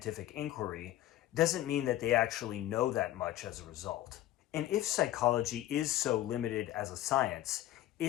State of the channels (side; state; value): right; quieter; 14.1 dB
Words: inquiry doesn't mean that they actually know that much as a result. And if psychology is so limited as a science,